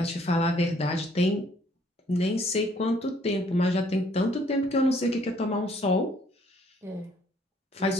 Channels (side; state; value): both; normal; correlation 0.63